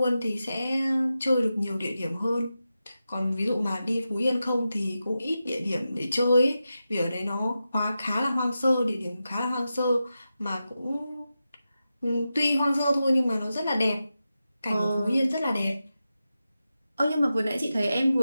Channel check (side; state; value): both; inverted; correlation -0.91